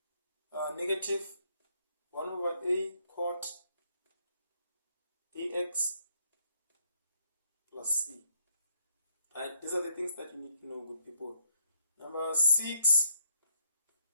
-1 over a cot ax plus c. Right? These are the things that you need to know, good people. Number 6,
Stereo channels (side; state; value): both; inverted; correlation -0.70